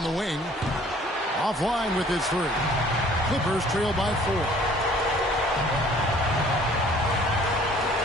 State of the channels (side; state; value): both; normal; correlation 0.55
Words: the wing. Offline with his 3. Clippers trail by 4.